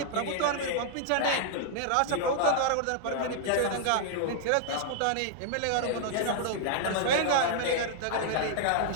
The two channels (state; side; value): different; both; correlation -0.01